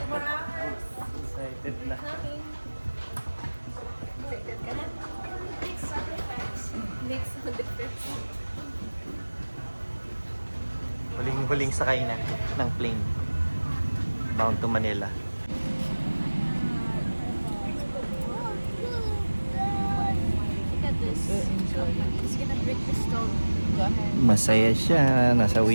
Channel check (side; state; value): both; inverted; correlation -1.00